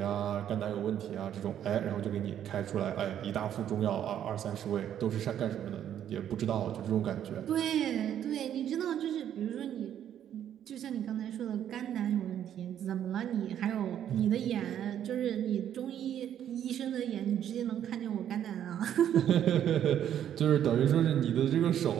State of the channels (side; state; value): left; quieter; 10.2 dB